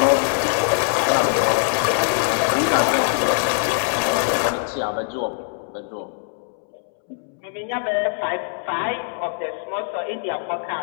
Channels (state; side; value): silent; right; 64 dB below the other